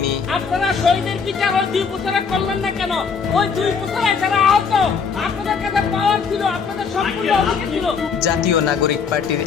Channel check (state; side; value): quieter; right; 5.8 dB